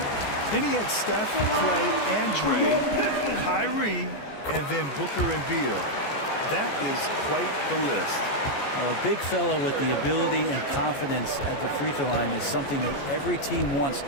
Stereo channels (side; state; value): right; late; 14 ms